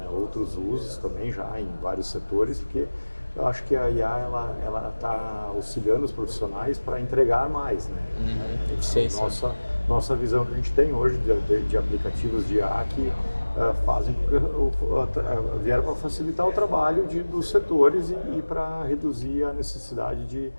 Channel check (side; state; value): both; inverted; correlation -1.00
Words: Outros usos também já em vários setores, porque eu acho que a IA ela está auxiliando os profissionais para entregar mais, né? Nossa visão que a gente tem hoje de aplicativos de IA que vieram para facilitar o trabalho dos setores e para reduzir a necessidade